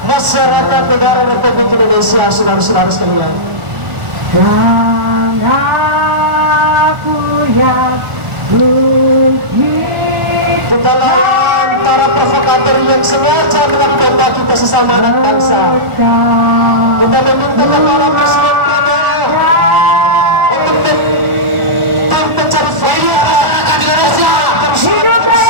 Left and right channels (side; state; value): left; late; 1.4 ms